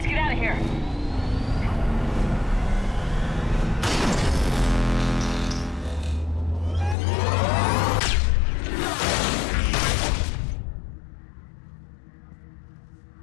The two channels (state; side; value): drops out; right; at 7.0 s